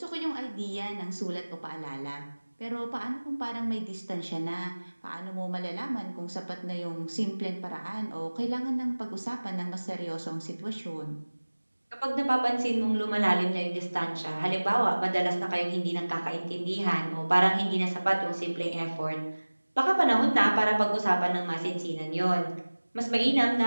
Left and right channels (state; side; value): inverted; both; correlation -1.00